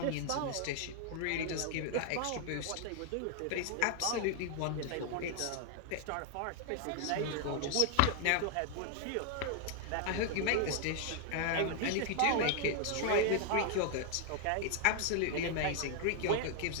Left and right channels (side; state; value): both; different; correlation 0.00